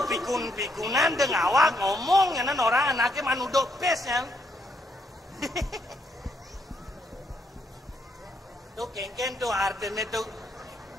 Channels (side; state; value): both; normal; correlation 0.75